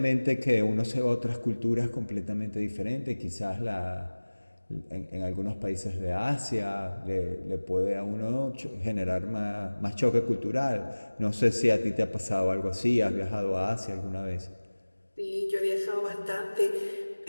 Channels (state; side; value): inverted; both; correlation -1.00